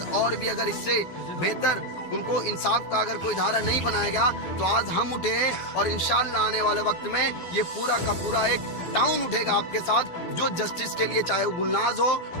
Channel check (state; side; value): late; right; 12 ms